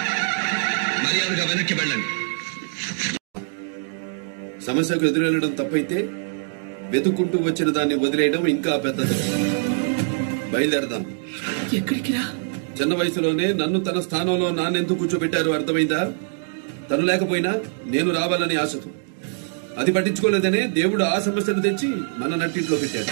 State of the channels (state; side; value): silent; left; digital silence